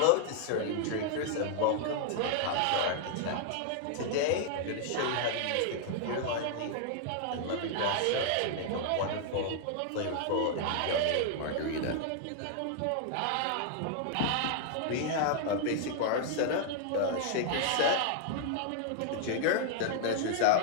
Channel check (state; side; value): different; both; correlation 0.00